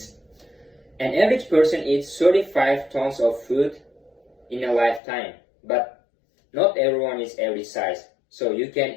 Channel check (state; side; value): drops out; right; at 5.0 s